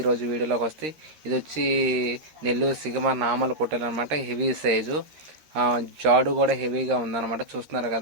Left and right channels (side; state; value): left; late; 13 ms